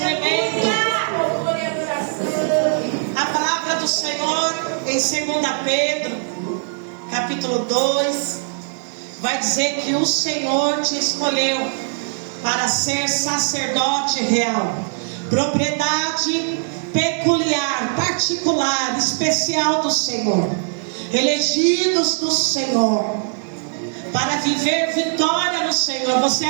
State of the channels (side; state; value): left; silent; 65 dB below the other